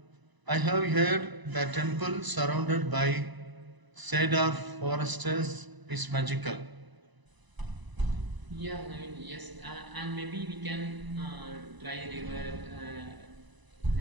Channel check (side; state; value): left; late; 1.0 ms